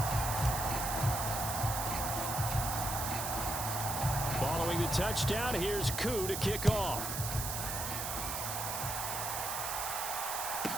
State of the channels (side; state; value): right; noise; hiss, 3 dB below the sound